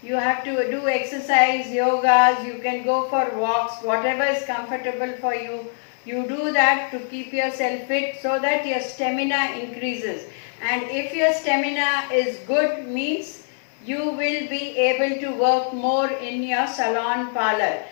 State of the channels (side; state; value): right; silent; digital silence